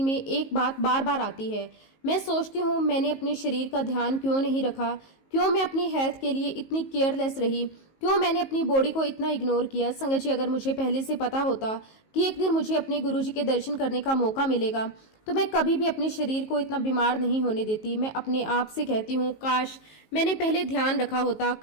में एक बात बार बार आती है। मैं सोचती हूँ, मैंने अपने शरीर का ध्यान क्यों नहीं रखा, क्यों मैं अपनी हेल्थ के लिए इतनी केयरलेस रही, क्यों मैंने अपनी बॉडी को इतना इग्नोर किया। संगत जी, अगर मुझे पहले से पता होता कि एक दिन मुझे अपने गुरुजी के दर्शन करने का मौका मिलेगा तो मैं कभी भी अपने शरीर को इतना बीमार नहीं होने देती। मैं अपने आप से कहती हूँ, काश मैंने पहले ध्यान रखा होता,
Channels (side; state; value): right; late; 19 ms